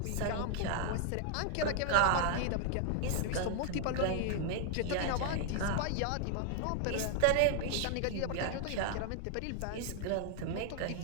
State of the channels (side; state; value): both; different; correlation 0.00